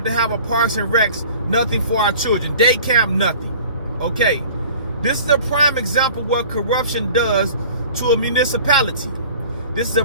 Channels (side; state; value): both; inverted; correlation -0.45